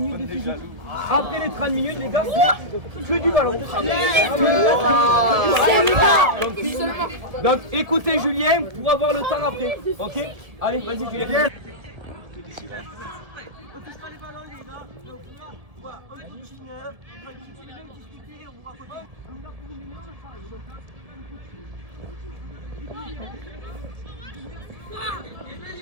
de physique. Après les 30 minutes, les gars, c'est que du ballon. Donc, écoutez Julien pour avoir le temps après. Ok? Allez, vas-y, Julien.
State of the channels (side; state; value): left; late; 1.7 ms